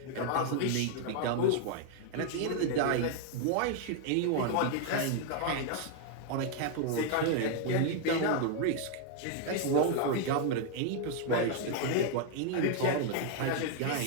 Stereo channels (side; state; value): both; different; correlation 0.00